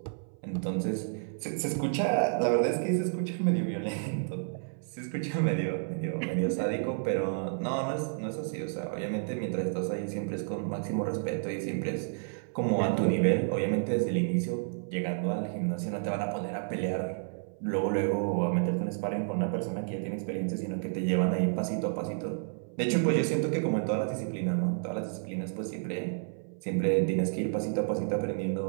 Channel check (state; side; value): silent; left; 57 dB below the other